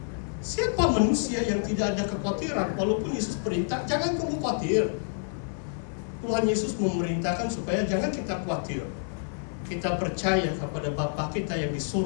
Siapa manusia yang tidak ada kekhawatiran? Walaupun Yesus perintah, jangan kamu khawatir. Tuhan Yesus memerintahkan supaya jangan kita khawatir. Kita percaya kepada Bapa kita yang di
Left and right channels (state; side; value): silent; right; digital silence